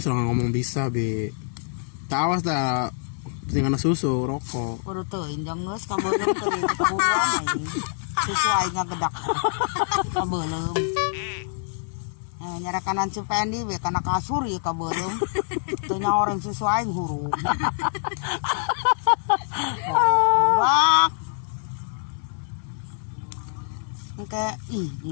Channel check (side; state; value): right; silent; digital silence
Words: serang ngomong bisa be. Tak awas dah tinggal susu rokok. Borotoyin jeung geus kabeuleum teu ieu ketahuan aing. Susu aing ngagedak. Kabeuleum. Nyara kanan Cipendi we kana kasur ieu kabeuleum. Teu nyaoreng susu aing hurung. Bak. Engke ih